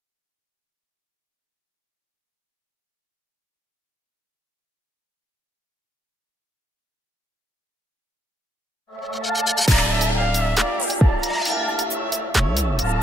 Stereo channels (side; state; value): both; normal; correlation 0.78